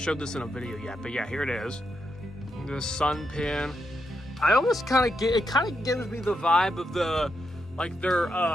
this in a video yet. But yeah, here it is. The Sun pin. I almost kind of gives me the vibe of their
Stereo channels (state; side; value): normal; both; correlation 0.83